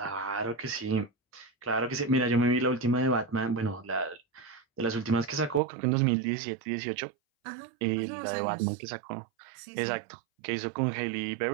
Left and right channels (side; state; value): left; drops out; at 5.6 s